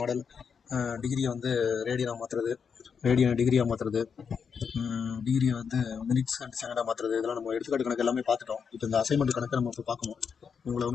டிகிரியை வந்து ரேடியனாக மாற்றுறது, ரேடியனை டிகிரியாக மாற்றுறது, டிகிரியை வந்து மினிட்ஸ் அண்ட் செகண்டாக மாற்றுறது, இதெல்லாம் நம்ம எடுத்துக்காட்டு கணக்கு எல்லாமே பார்த்துட்டோம். இப்போ இந்த அசைன்மெண்ட் கணக்கை நம்ம இப்போ பார்க்கணும். உங்களை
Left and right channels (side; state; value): right; quieter; 6.4 dB